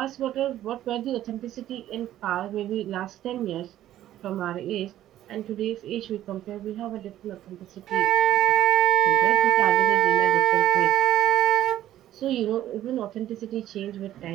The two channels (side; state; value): left; quieter; 12.8 dB